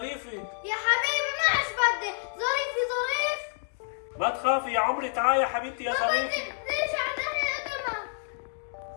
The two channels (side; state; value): right; silent; digital silence